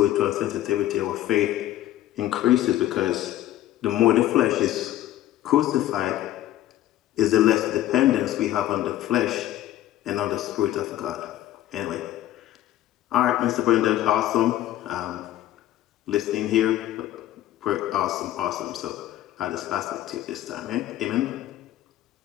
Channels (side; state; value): right; quieter; 13.6 dB